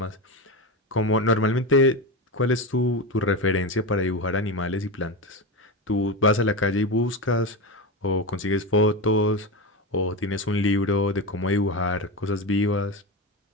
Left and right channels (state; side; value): normal; both; correlation 0.18